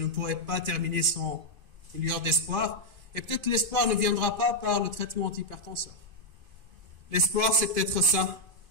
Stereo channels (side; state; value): left; late; 2.5 ms